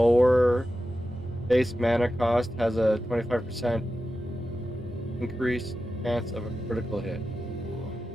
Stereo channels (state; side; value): normal; both; correlation 0.92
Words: base mana cost has a 25% increased chance of a critical hit.